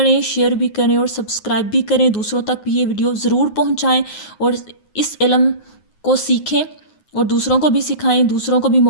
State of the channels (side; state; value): right; late; 9.5 ms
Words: شیئر بھی کریں اور سبسکرائب بھی کریں. دوسروں تک بھی یہ ویڈیو ضرور پہنچائیں اور اس علم کو سیکھیں اور دوسروں کو بھی سکھائیں، دوسروں کو بھی